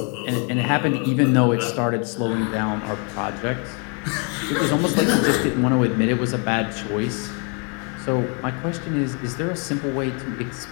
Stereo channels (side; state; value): right; quieter; 36.6 dB